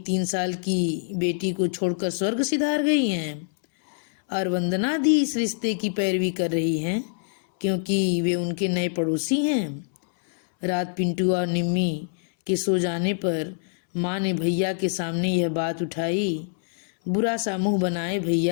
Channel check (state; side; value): silent; right; 62 dB below the other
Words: साल की बेटी को छोड़कर स्वर्ग सिधार गई हैं। और वंदना दी इस रिश्ते की पैरवी कर रही हैं, क्योंकि वे उनके नए पड़ोसी हैं। रात पिंटू और निम्मी के सो जाने पर माँ ने भैया के सामने यह बात उठाई। बुरा सा मुंह बनाए